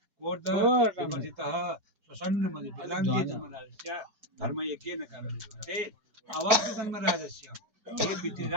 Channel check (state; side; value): late; left; 4.4 ms